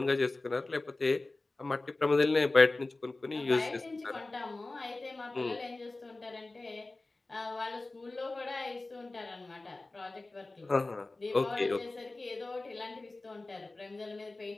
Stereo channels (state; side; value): quieter; right; 3.1 dB